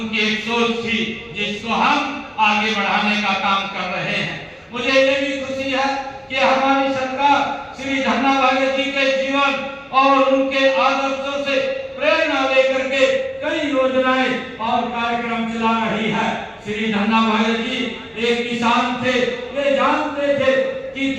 एक सोच थी जिसको हम आगे बढ़ाने का काम कर रहे हैं। मुझे ये भी खुशी है कि हमारी सरकार श्री धन्ना बघेल जी के जीवन और उनके आदर्शों से प्रेरणा लेकर के कई योजनाएं और कार्यक्रम चला रही है। श्री धन्ना बघेल जी एक किसान थे, वे जानते थे कि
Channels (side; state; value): both; identical; correlation 1.00